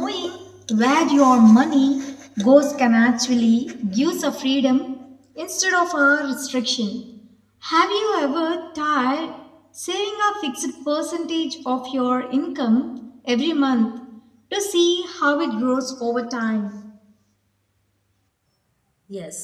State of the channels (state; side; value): identical; both; correlation 1.00